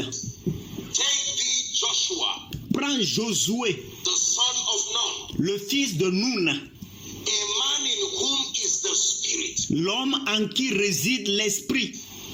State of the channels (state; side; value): identical; both; correlation 1.00